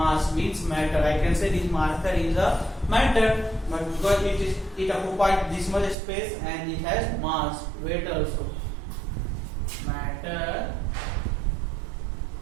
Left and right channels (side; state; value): left; drops out; at 6.0 s